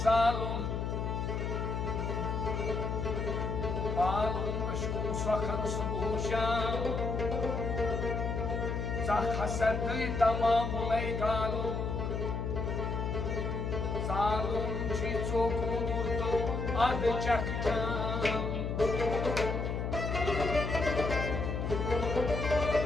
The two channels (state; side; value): noise; left; hum, 2 dB below the sound